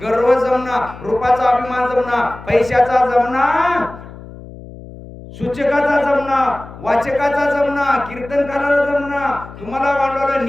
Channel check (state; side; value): noise; left; hum, 16 dB below the sound